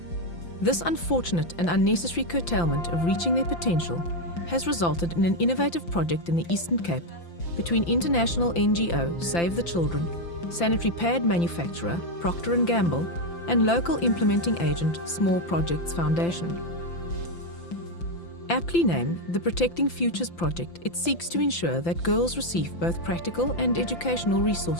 This unfortunate and unnecessary curtailment of reaching their potential has resulted in an innovative project in the Eastern Cape between international NGO Save the Children, sanitary pad manufacturer Procter & Gamble, and local implementing agent Small Projects Foundation. Aptly named the Protecting Futures Project, it seeks to ensure that girls receive both practical and educational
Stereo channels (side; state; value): right; late; 5.8 ms